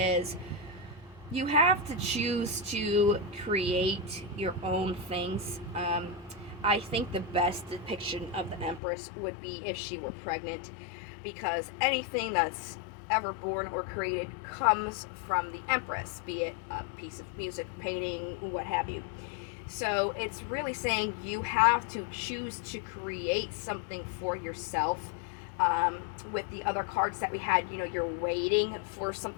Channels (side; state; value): right; drops out; at 8.8 s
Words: you have to choose to create your own things. I think the best depiction of the Empress would be if she were pregnant, because anything that's ever born or created comes from the Empress, be it a piece of music, painting, what have you. So it's really saying you have to choose to create something for yourself. With the other cards that we had, you're waiting for